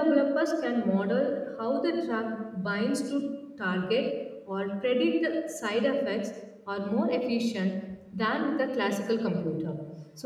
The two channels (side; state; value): both; identical; correlation 1.00